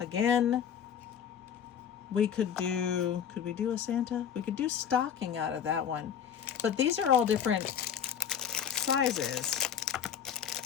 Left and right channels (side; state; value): right; quieter; 8.4 dB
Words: we could we do a Santa? We could do stocking out of that one. But these are all different sizes.